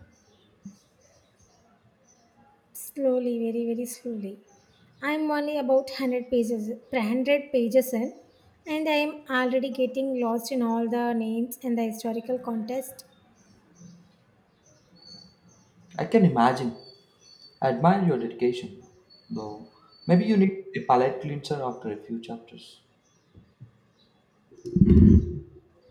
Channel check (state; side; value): identical; both; correlation 1.00